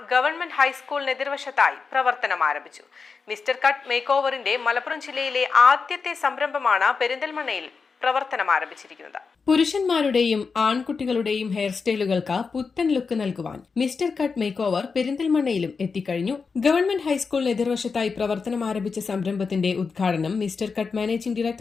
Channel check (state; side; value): quieter; right; 5.0 dB